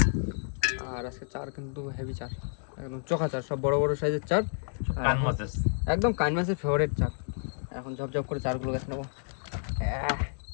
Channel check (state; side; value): silent; right; digital silence